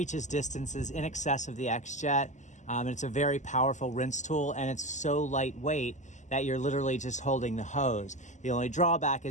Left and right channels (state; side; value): late; right; 0.35 ms